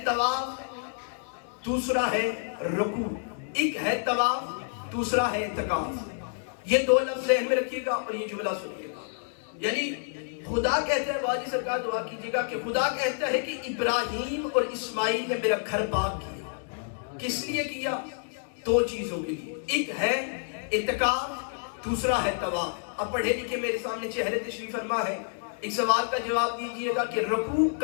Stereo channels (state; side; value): silent; right; digital silence